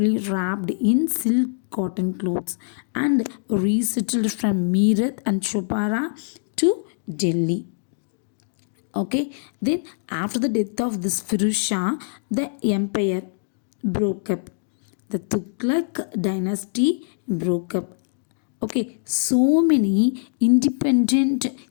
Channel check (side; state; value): right; silent; digital silence